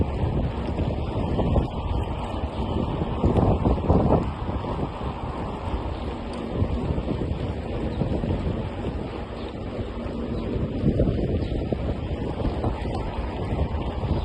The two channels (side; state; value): both; identical; correlation 1.00